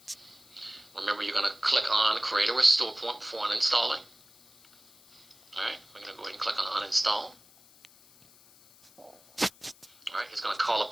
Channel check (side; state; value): left; noise; hiss, 26 dB below the sound